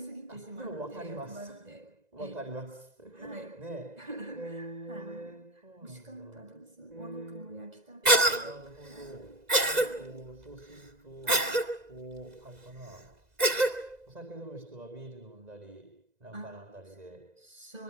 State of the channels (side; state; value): left; late; 2.0 ms